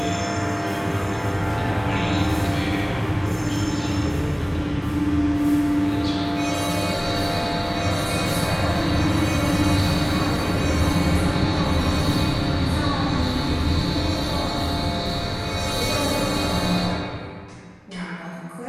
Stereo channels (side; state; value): both; identical; correlation 1.00